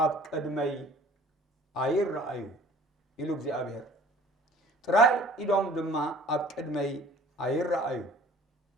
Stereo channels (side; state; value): both; normal; correlation 0.49